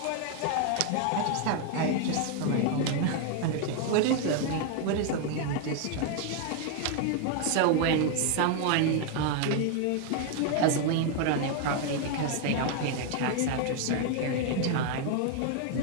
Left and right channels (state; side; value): different; both; correlation 0.00